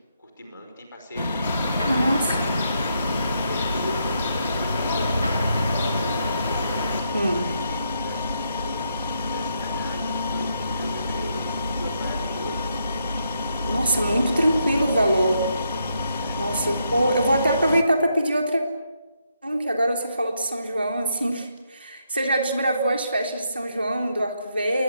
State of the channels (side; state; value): both; inverted; correlation -0.78